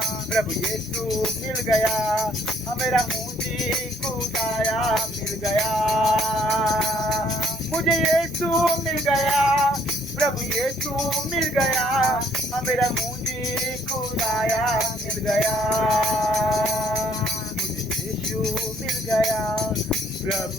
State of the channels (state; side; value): normal; both; correlation 0.65